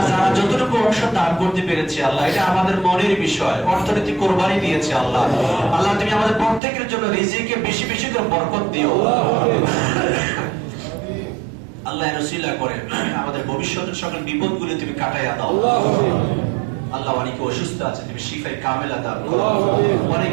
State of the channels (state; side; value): drops out; left; at 6.6 s